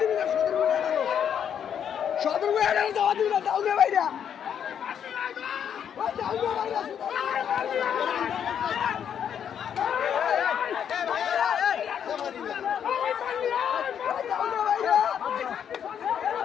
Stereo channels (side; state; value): right; quieter; 8.5 dB